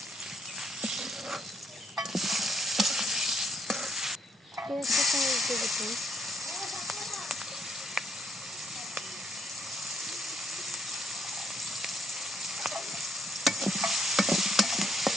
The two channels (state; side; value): normal; both; correlation 0.72